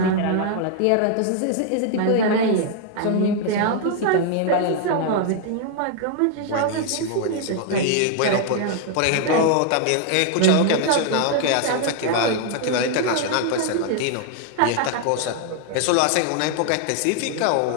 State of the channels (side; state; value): both; different; correlation 0.00